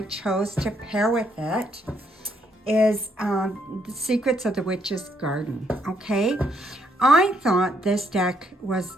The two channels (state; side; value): normal; both; correlation 0.72